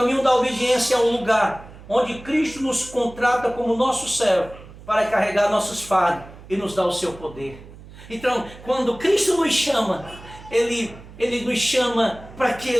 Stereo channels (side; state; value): right; noise; hum, 18 dB below the sound